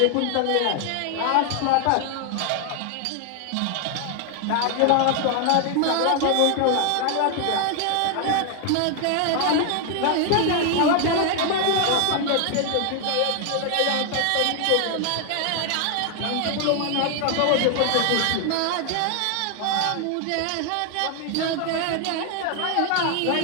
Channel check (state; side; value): different; both; correlation 0.00